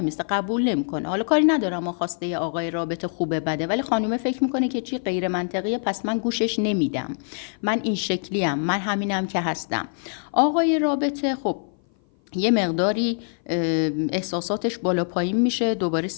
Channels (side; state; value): right; silent; 57 dB below the other